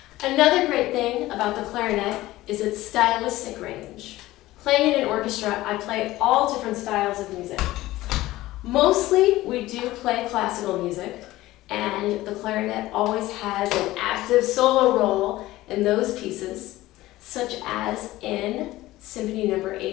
Another great thing about the clarinet is its stylistic range. Playing in an orchestra, I play all different styles of music. Mostly, we do play classical music, and the clarinet always has an active solo role in those pieces, such as in Symphony No.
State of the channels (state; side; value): quieter; right; 17.0 dB